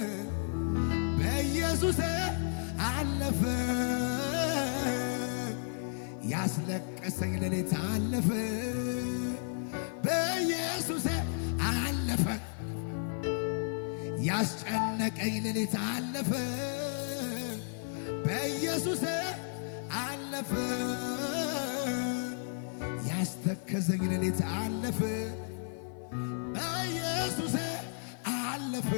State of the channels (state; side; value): silent; right; 56 dB below the other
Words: በኢየሱስ አለፈ ያስለቀሰኝ ሌሊት አለፈ በኢየሱስ አለፈ ያስጨነቀኝ ሌሊት አለፈ በኢየሱስ አለፈ። ያስተከዘኝ ሌሊት አለፈ በኢየሱስ አለፈ።